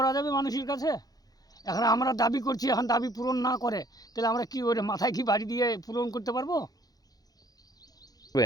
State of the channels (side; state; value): right; late; 0.18 ms